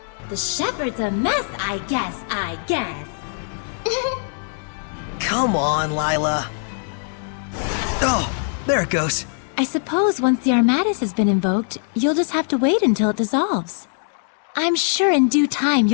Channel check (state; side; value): silent; right; digital silence